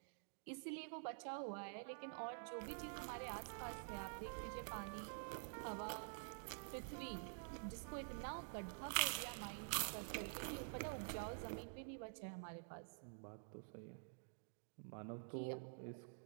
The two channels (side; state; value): left; silent; digital silence